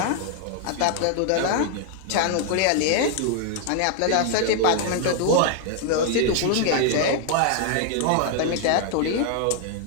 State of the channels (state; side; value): different; both; correlation 0.00